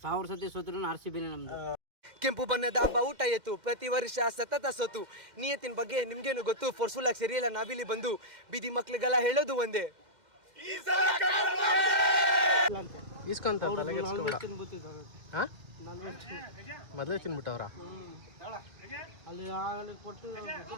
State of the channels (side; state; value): left; late; 2.1 ms